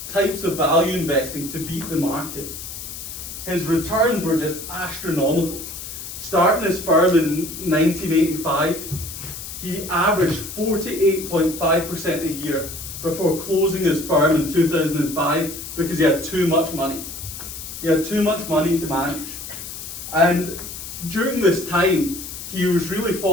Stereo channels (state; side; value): noise; left; hiss, 10 dB below the sound